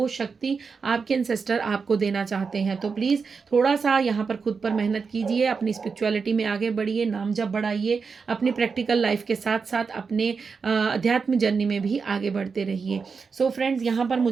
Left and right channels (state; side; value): quieter; left; 5.2 dB